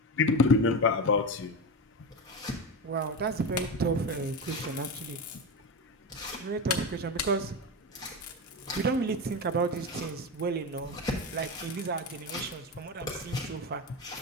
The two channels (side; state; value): both; normal; correlation 0.19